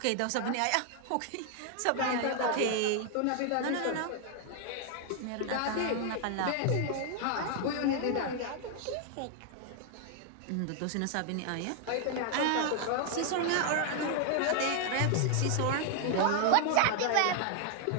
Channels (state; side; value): different; both; correlation 0.00